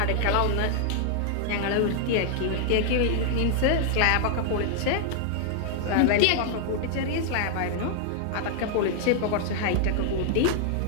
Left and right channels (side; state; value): both; different; correlation 0.00